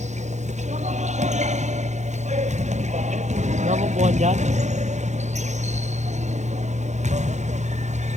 Wala mo buwan dyan?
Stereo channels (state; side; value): late; left; 0.34 ms